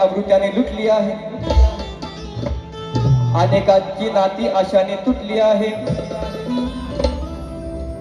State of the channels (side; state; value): both; identical; correlation 1.00